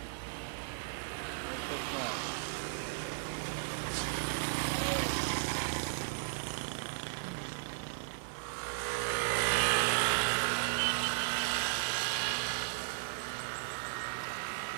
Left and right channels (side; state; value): left; silent; digital silence